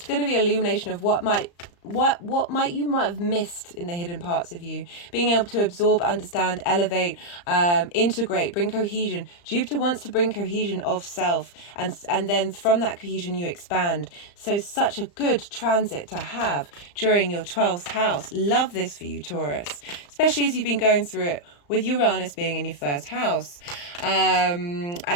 going to be illumination of what you might have missed in the hidden parts of you, being able to absorb, understand, elevate, integrate, bring cohesion. Jupiter wants to bring cohesion of self, and then from that cohesion you expand. So such a good transit to have during your 12th house. Love this for you, Taurus, especially as you've been going through it with Uranus being in your 1st house.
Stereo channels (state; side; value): late; right; 35 ms